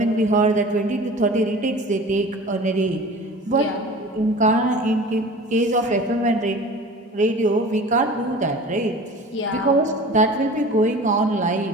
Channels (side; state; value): both; normal; correlation 0.40